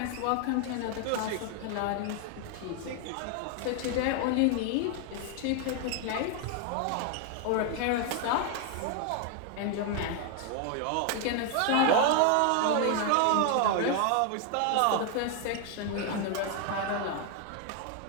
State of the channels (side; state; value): both; different; correlation 0.00